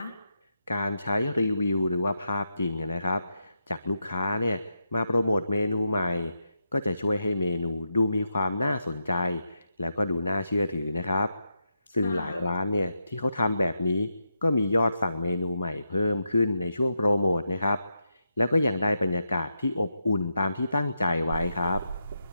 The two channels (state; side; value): inverted; both; correlation -0.85